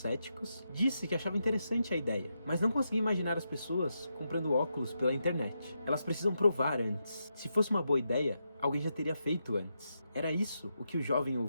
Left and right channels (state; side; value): inverted; both; correlation -0.84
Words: disse que achava interessante a ideia, mas não conseguia imaginar as pessoas comprando óculos pela internet. Elas precisam provar antes. Se fosse uma boa ideia, alguém já teria feito antes. Era isso o que o jovem